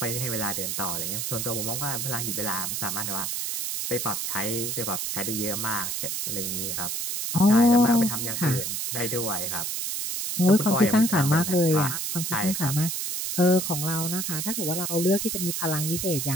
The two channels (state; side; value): noise; right; hiss, 2 dB below the sound